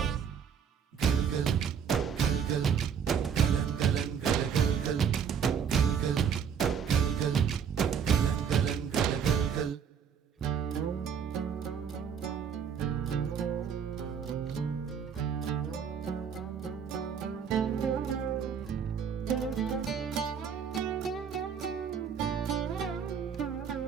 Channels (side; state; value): left; quieter; 7.3 dB